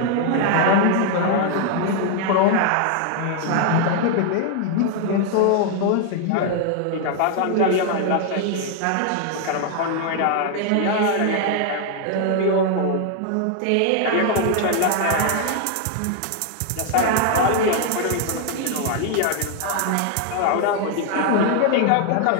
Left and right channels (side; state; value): both; different; correlation 0.00